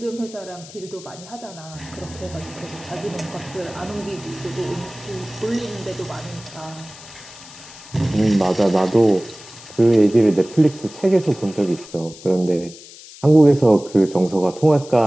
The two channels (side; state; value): left; noise; hiss, 18 dB below the sound